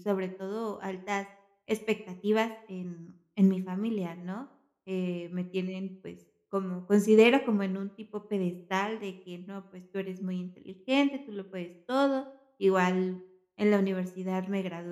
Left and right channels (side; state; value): both; identical; correlation 1.00